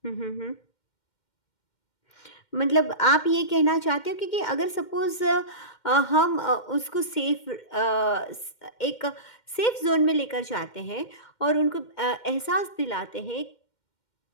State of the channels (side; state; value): right; late; 2.1 ms